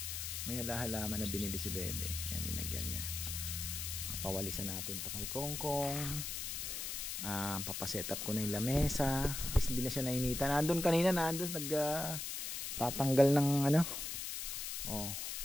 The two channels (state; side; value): noise; left; hiss, 4 dB below the sound